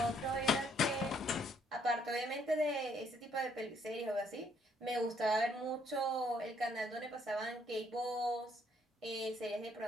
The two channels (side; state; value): both; normal; correlation 0.68